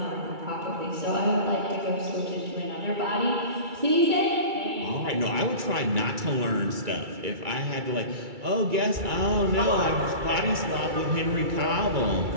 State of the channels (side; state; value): left; late; 2.3 ms